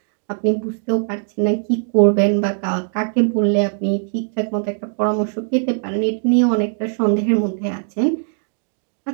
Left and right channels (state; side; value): silent; left; 66 dB below the other